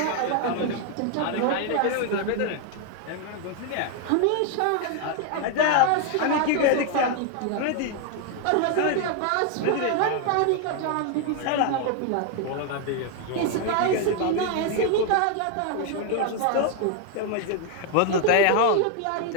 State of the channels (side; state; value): both; different; correlation 0.01